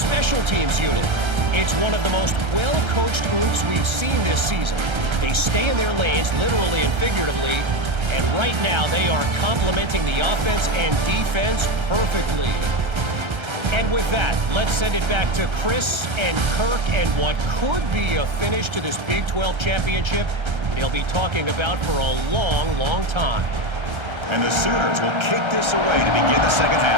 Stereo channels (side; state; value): left; late; 1.3 ms